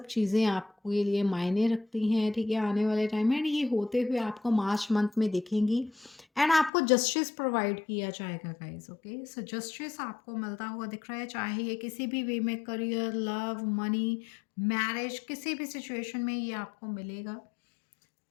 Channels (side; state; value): right; drops out; at 6.7 s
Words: चीज़ें आपके लिए मायने रखती हैं, ठीक है, आने वाले टाइम में। एंड ये होते हुए आपको मार्च मंथ में दिखेंगी। एंड आपको जस्टिस प्रोवाइड किया जाएगा गाइज, ओके। सो जस्टिस आपको मिलता हुआ दिख रहा है, चाहे ये किसी भी वे में, करियर, लव, मनी, मैरिज, किसी भी सिचुएशन में ये आपको मिलेगा।